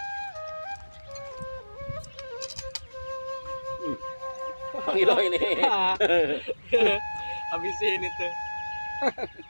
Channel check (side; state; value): both; inverted; correlation -1.00